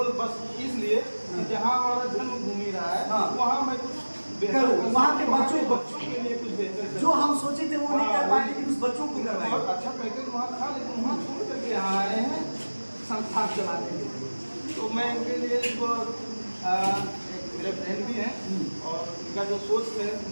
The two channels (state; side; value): inverted; both; correlation -1.00